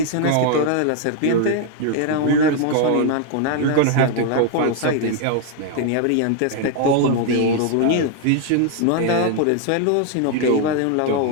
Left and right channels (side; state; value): both; different; correlation 0.00